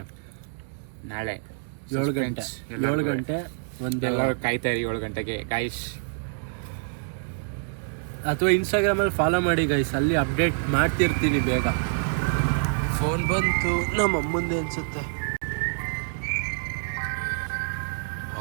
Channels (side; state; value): left; silent; digital silence